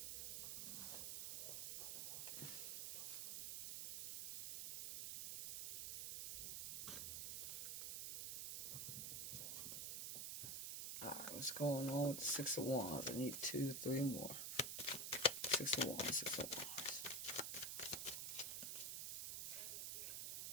What's going on with the Six of Wands? I need 2, 3 more. Six of Wands, Six of Wands.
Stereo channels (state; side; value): noise; right; hiss, 3 dB below the sound